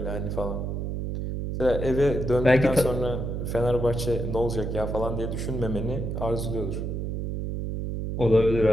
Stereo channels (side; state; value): right; noise; hum, 3 dB below the sound